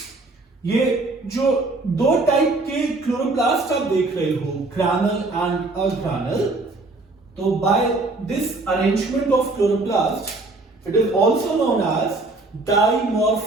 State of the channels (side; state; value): left; quieter; 3.2 dB